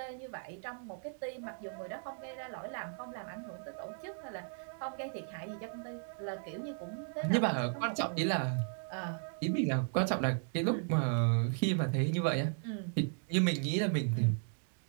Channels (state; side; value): silent; left; 54 dB below the other